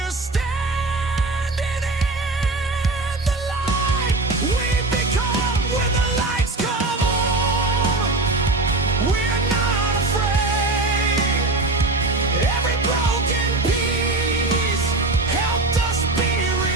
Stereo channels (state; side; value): quieter; left; 3.1 dB